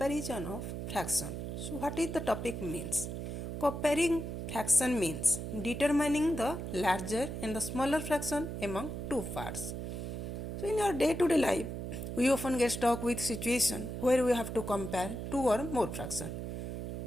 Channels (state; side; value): noise; right; hum, 5 dB below the sound